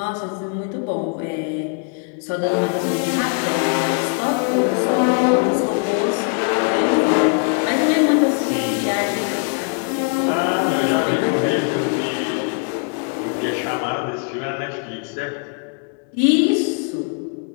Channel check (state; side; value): quieter; right; 36.9 dB